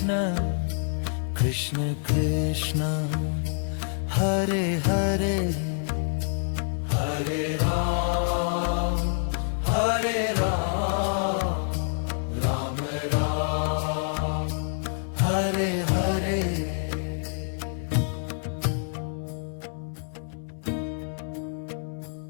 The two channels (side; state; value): right; silent; digital silence